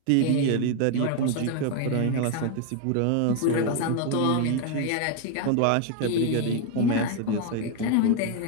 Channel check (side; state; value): both; different; correlation 0.01